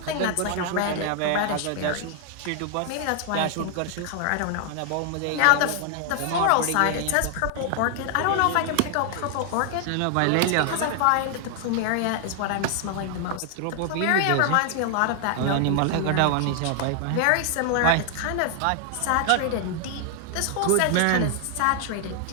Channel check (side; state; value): both; different; correlation 0.00